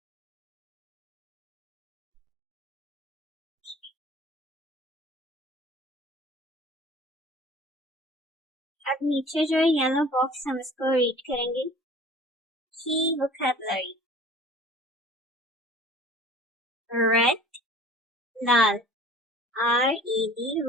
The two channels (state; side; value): normal; both; correlation 0.46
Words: अब नीचे जो है येलो बॉक्स हम इसको रीड करेंगे। की वोकैबुलरी। रेड लाल RED